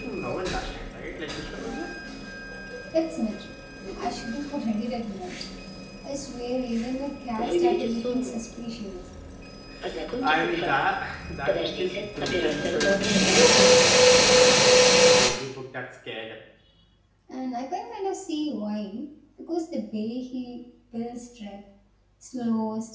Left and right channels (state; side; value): identical; both; correlation 1.00